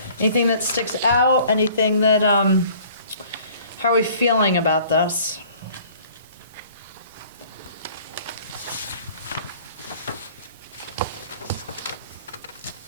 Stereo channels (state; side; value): inverted; both; correlation -0.52